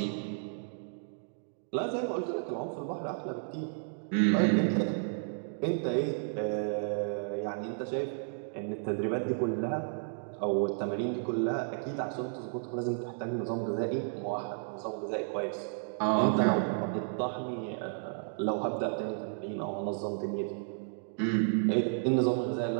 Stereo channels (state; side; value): silent; left; digital silence